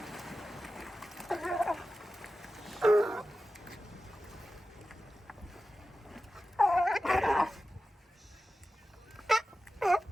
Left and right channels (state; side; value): normal; both; correlation 0.94